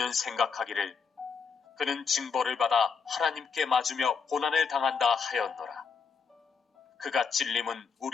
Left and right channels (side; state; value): right; quieter; 5.9 dB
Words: 생각하기를 그는 징벌을 받아 하나님께 맞으며 고난을 당한다 하였노라. 그가 찔림은